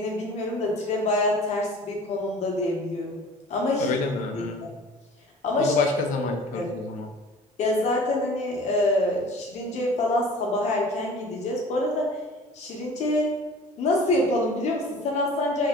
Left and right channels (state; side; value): normal; both; correlation 0.44